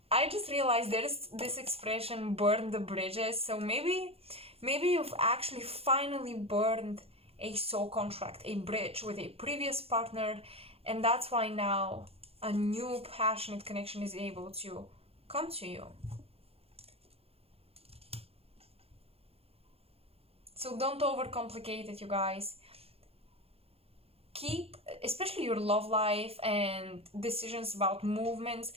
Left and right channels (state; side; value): late; left; 0.29 ms